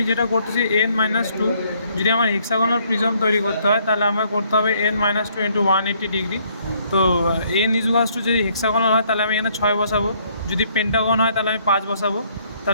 যেটা করতেছি n-2, যদি আমার হেক্সাগোনাল প্রিজম তৈরি করতে হয় তাহলে আমার করতে হবে n-2 ইন্টু 180 ডিগ্রি। তো n ইজুয়ালস টু যদি হেক্সাগোনাল হয় তাহলে আমি এখানে 6 বসাবো, যদি পেন্টাগন হয় তাহলে আমি 5 বসাবো।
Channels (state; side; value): inverted; both; correlation -0.66